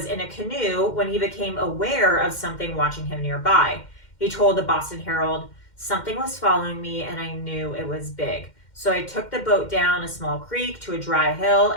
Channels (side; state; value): right; late; 2.1 ms